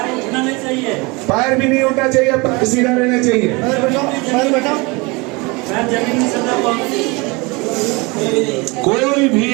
पैर भी नहीं उठना चाहिए, पैर सीधा रहना चाहिए। कोई भी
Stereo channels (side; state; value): left; quieter; 26.4 dB